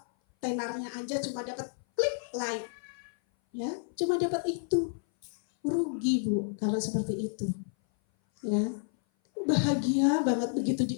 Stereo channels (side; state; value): right; silent; 56 dB below the other